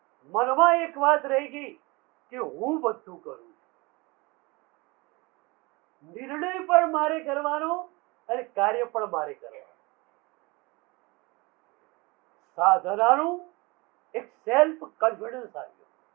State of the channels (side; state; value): left; quieter; 25.3 dB